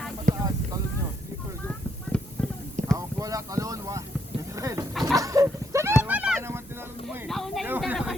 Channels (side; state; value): both; normal; correlation 0.75